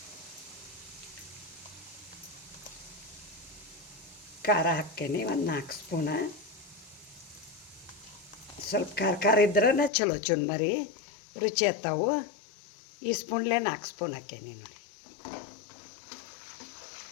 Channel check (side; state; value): right; drops out; at 9.9 s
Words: ಖಾರ ಹಾಕ್ತೇನೆ ಒಂದು 4 ಸ್ಪೂನ. ಸ್ವಲ್ಪ ಖಾರ ಇದ್ರೆ ಚಲೋ ಚುನ್ಮರಿ ರುಚಿ ಹತ್ತಾವು. ಈ ಸ್ಪೂನ್ಲೇ 4 ಸ್ಪೂನ್ ಹಾಕೇನಿ ನೋಡಿ.